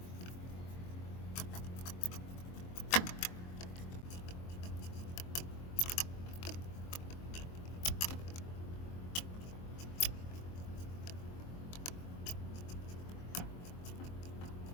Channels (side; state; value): right; late; 23 ms